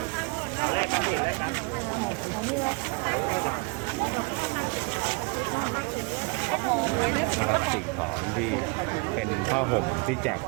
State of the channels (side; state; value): left; quieter; 30.6 dB